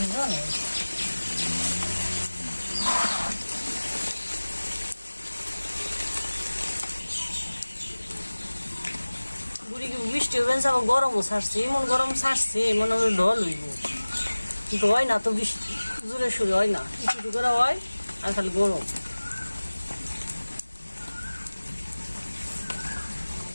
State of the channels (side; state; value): both; inverted; correlation -1.00